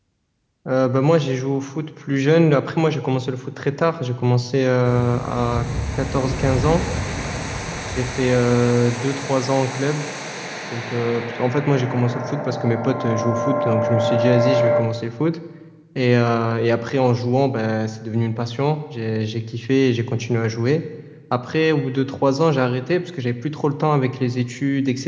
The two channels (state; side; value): identical; both; correlation 1.00